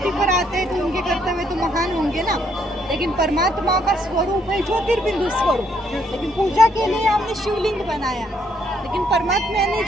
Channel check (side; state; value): both; normal; correlation 0.71